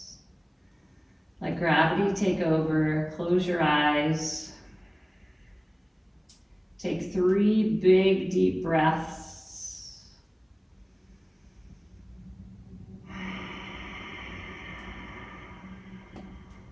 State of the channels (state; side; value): identical; both; correlation 1.00